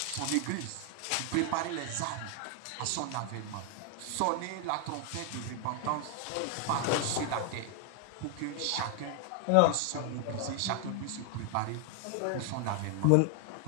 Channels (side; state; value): both; different; correlation 0.00